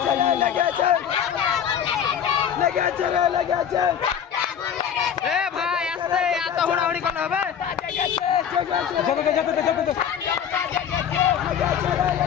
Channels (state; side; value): quieter; right; 8.6 dB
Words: এ ভাই আস্তে এত হুড়াহুড়ি করলে হবে